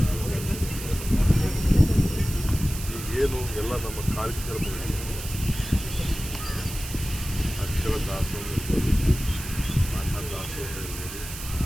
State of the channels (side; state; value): right; noise; hiss, 10 dB below the sound